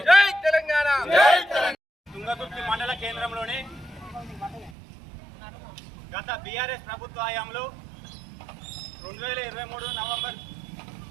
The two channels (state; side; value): drops out; left; at 4.8 s